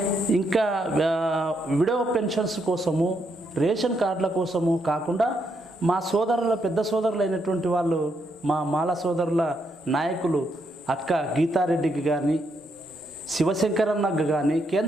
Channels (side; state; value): both; normal; correlation 0.78